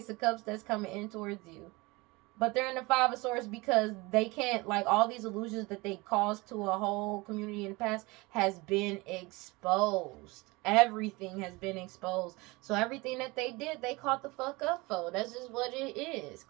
of Cups that's coming in towards you. But they're in the Five of Swords because they can't, like, all these illusions that they caused to a whole community in the past has been exposed. Everything has been exposed. So everything that they did, they caught the fuck up for. That's just what it is.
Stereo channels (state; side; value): quieter; left; 23.8 dB